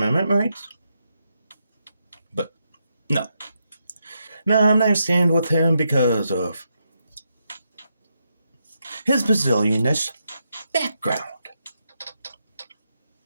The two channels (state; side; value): inverted; both; correlation -0.83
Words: rights. But, no. No, I'm not stand with him because of his bazillionish background.